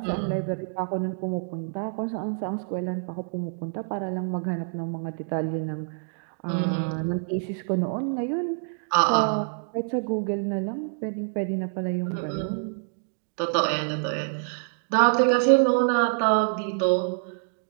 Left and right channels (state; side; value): silent; left; digital silence